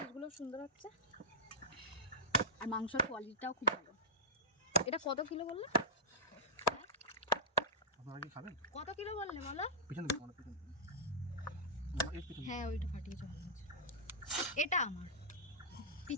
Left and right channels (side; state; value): both; normal; correlation -0.13